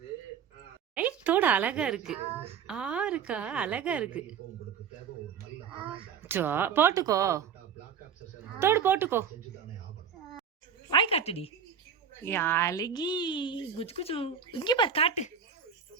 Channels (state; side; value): quieter; left; 7.3 dB